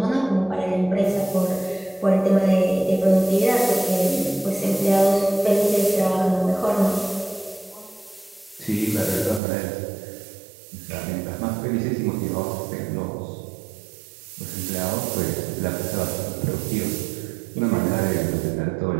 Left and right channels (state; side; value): drops out; left; at 9.4 s